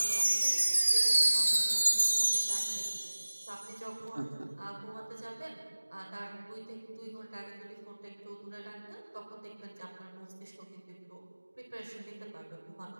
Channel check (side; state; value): both; inverted; correlation -1.00